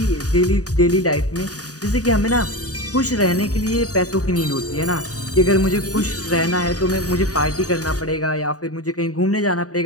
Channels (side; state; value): right; late; 0.67 ms